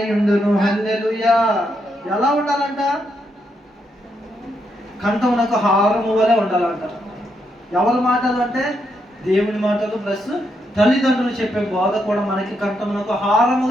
ఉండును. హల్లెలూయా. ఎలా ఉండాలంట? కంఠమునకు హారము వలె ఉండాలంట. ఎవరి మాటలు అంటే దేవుని మాటలు ప్లస్ తల్లిదండ్రులు చెప్పే బోధ కూడా మనకి కంఠమునకు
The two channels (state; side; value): normal; both; correlation 0.79